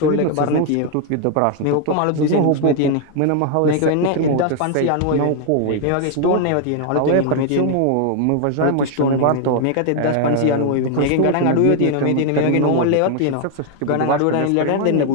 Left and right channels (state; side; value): different; both; correlation 0.00